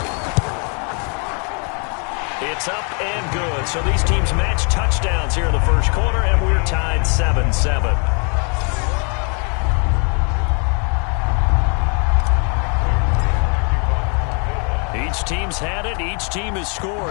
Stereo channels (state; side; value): quieter; right; 38.0 dB